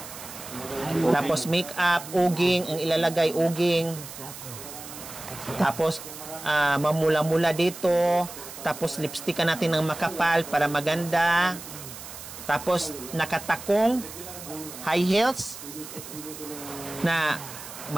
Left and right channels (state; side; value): noise; right; hiss, 13 dB below the sound